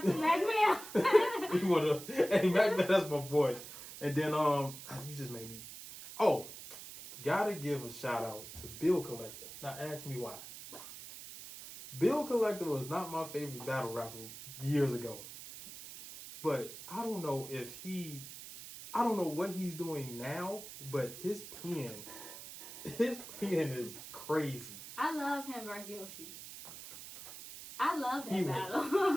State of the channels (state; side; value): noise; right; hiss, 13 dB below the sound